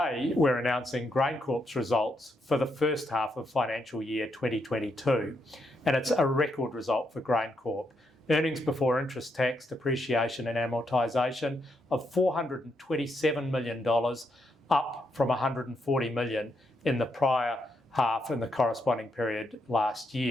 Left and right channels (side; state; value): both; normal; correlation 0.79